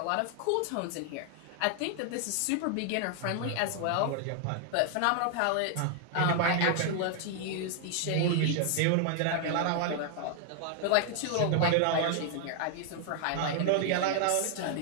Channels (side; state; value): both; different; correlation 0.00